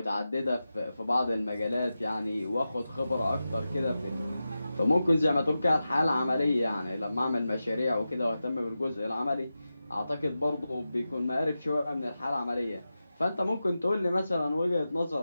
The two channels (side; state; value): both; inverted; correlation -0.93